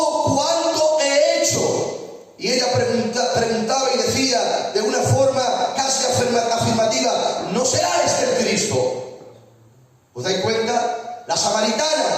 cuanto he hecho. Y ella preguntaba y decía de una forma casi afirmativa: ¿no será este el Cristo? ¿Os dais cuenta? La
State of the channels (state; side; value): identical; both; correlation 1.00